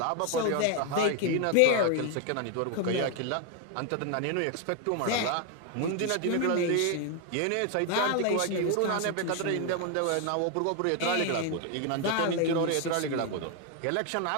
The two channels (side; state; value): both; different; correlation 0.01